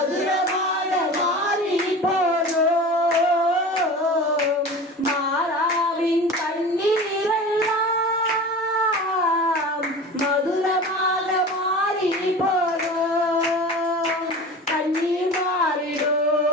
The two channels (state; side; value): normal; both; correlation 0.34